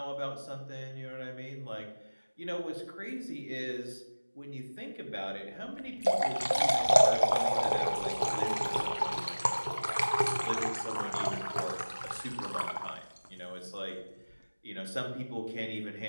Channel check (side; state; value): both; inverted; correlation -1.00